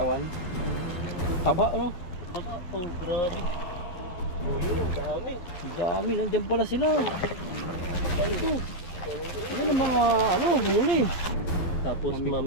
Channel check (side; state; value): right; late; 11 ms